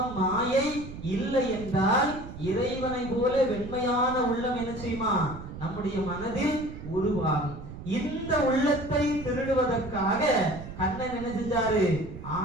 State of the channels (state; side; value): noise; right; rumble, 12 dB below the sound